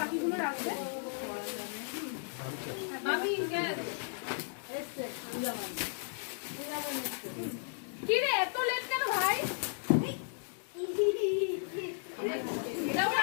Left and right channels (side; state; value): right; silent; digital silence